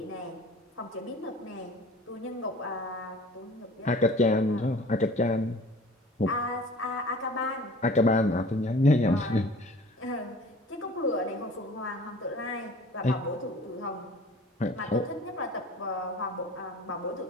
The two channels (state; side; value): normal; both; correlation 0.46